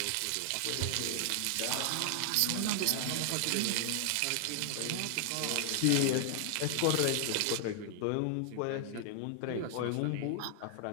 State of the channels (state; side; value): different; both; correlation 0.00